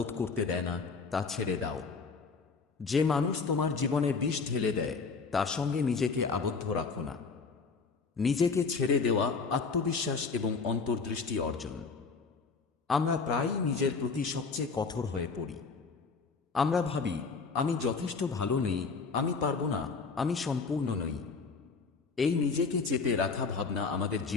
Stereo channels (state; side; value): quieter; right; 4.8 dB